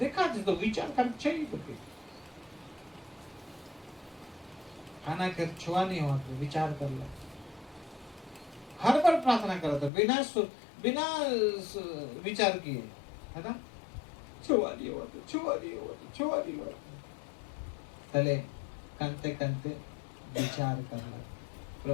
थी, तो विचार कर चाहिए तो खाना कर छुआ नहीं हुआ तो विचार कर ला। हर बार प्रार्थना करा था बिना विचार किए, है ना, छुआ नहीं हुआ तो छुआ नहीं हुआ तो छुआ नहीं हुआ, पहले कंते कंते विचार कर ला,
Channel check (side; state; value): right; drops out; at 9.9 s